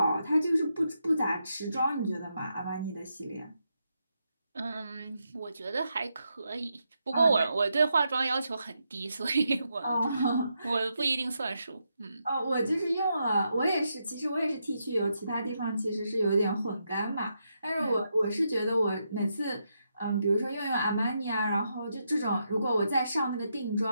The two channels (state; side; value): inverted; both; correlation -0.82